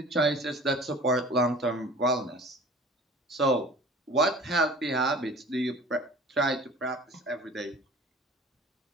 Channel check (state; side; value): normal; both; correlation 0.44